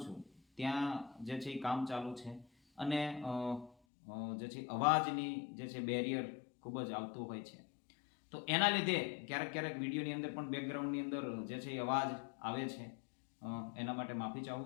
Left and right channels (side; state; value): right; drops out; at 3.7 s